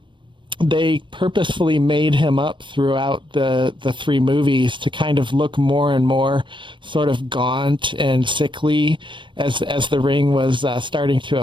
they purposefully made him up throughout the three movies to kind of look more and more sort of gaunt and sickly as the ring was starting to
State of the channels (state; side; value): late; left; 0.24 ms